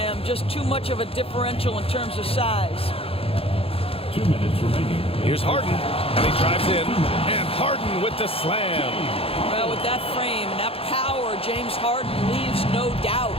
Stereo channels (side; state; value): right; late; 0.27 ms